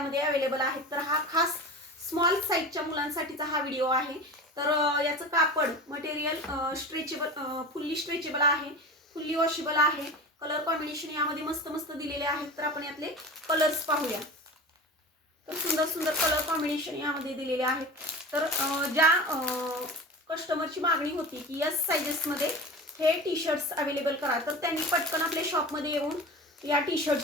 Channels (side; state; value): both; normal; correlation 0.32